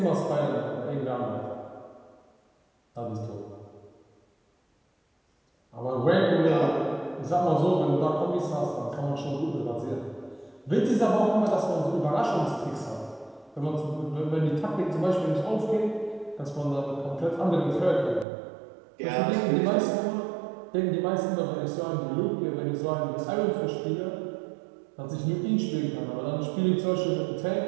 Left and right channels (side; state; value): left; drops out; at 18.2 s